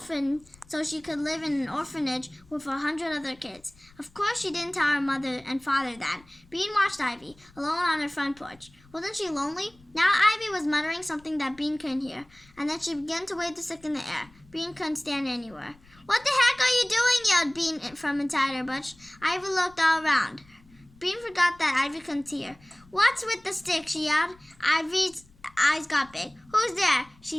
so she could live in an orphanage with 100 other kids. Of course, she didn't tell her mother and father that. Bean watched Ivy, alone on her front porch. Wasn't she lonely? Now Ivy was muttering something that Bean couldn't hear, and then she began to wave the stick in the air. Bean couldn't stand anywhere. What the heck are you doing? Yelled Bean from inside her bush. Ivy looked all around. Bean forgot that Ivy couldn't see her. What's with the stick? She yelled. Ivy's eyes got big. Who's there?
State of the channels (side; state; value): left; noise; rumble, 27 dB below the sound